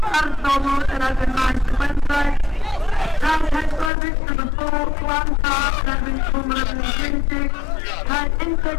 Arzomo and I've 9 to Wednesday. Now Hector, match number 4, Klanta and I've been 220. Had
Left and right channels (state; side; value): drops out; right; at 3.9 s